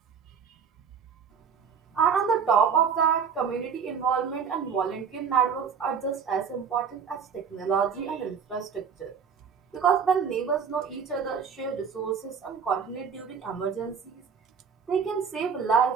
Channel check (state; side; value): quieter; left; 6.7 dB